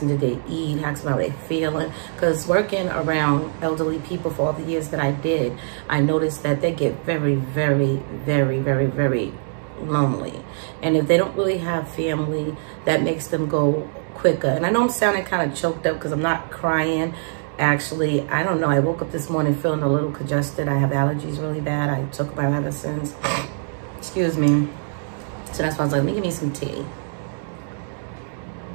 did they eat, ask them how they're feeling. Because working around elderly people for all the years that I did, I noticed that they get very, very, very, very, very lonely. And if they don't really have family, that makes them go quicker. And I know I'm sounding kind of choked up because I'm not crying. Actually, I don't know. I woke up this morning feeling a little congested. I have allergies really bad. I took my medicines. Excuse me. So that's why I was like, let me give me some tea.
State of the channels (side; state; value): left; silent; digital silence